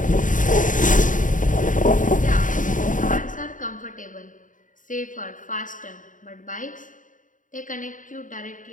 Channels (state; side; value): late; right; 0.38 ms